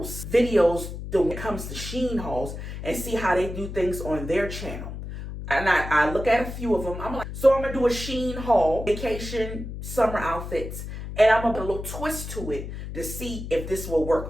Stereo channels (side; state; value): left; noise; hum, 8 dB below the sound